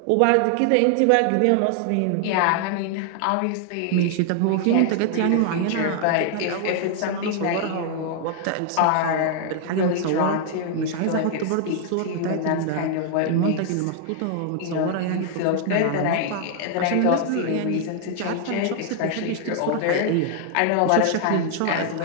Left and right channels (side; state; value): both; different; correlation 0.00